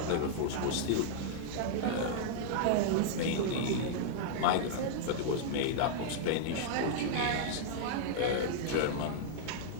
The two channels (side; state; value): both; different; correlation -0.01